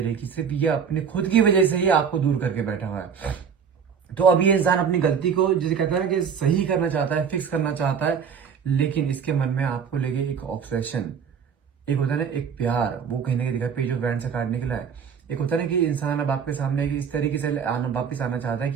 कि सिर्फ ये अपने खुद की वजह से ही आपको दूर करके बैठा हुआ है। तो अब ये इंसान अपनी गलती को जिसे कहता है ना कि सही करना चाहता है, फिक्स करना चाहता है, लेकिन इसके मन में आपको लेके एक ऑब्सेशन, एक होता है ना एक प्यार, वो कहीं ना कहीं दिखा, पेज ऑफ वैंड से कार्ड निकला है। एक होता है ना कि इंसान अब आपके सामने इस तरीके से वापिस आना चाहता है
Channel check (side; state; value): left; quieter; 6.9 dB